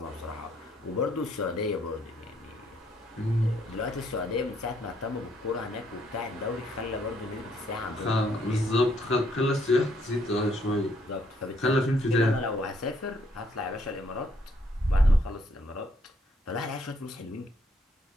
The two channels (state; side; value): normal; both; correlation 0.70